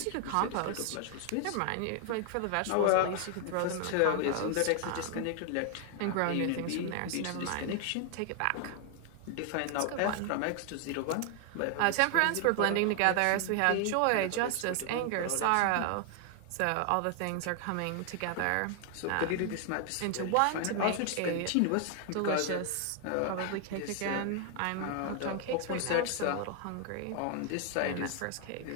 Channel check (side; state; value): both; different; correlation 0.00